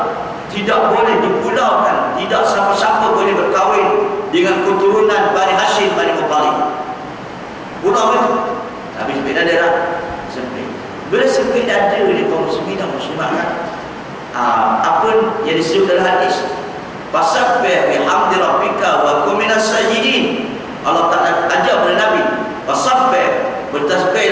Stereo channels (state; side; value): identical; both; correlation 1.00